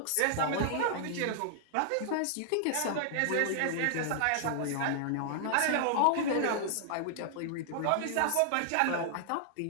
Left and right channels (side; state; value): both; different; correlation -0.01